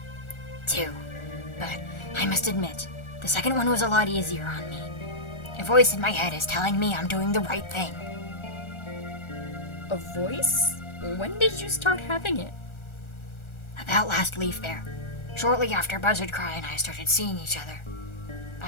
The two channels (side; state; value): right; late; 1.4 ms